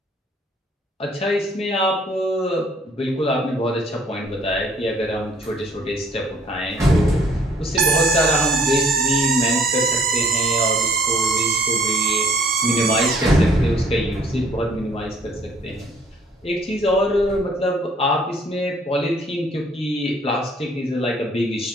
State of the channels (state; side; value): normal; both; correlation 0.60